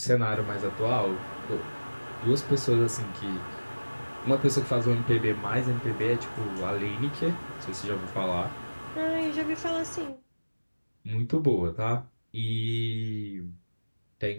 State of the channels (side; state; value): both; inverted; correlation -1.00